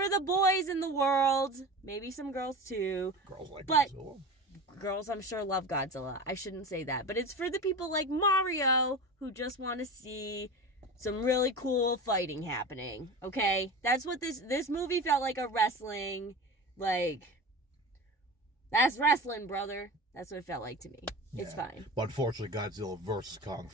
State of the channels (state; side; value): normal; both; correlation 0.30